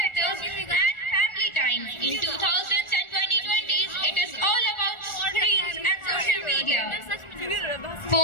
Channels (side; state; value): right; late; 1.4 ms